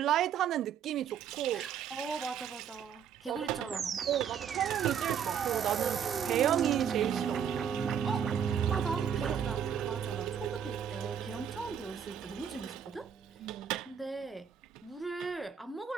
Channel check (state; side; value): quieter; left; 8.2 dB